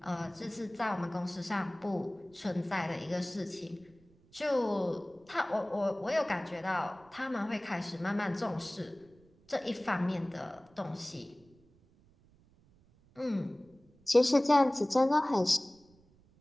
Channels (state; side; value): noise; right; rumble, 30 dB below the sound